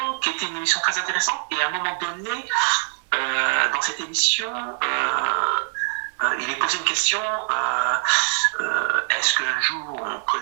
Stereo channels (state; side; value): silent; left; 56 dB below the other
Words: qui était une émission très intéressante. Et à un moment donné, dans cette émission, il est posé une question, est-ce qu'un jour on